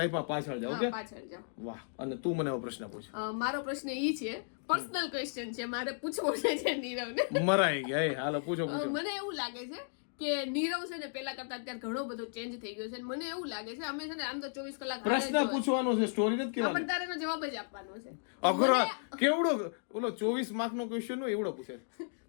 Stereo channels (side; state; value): right; silent; digital silence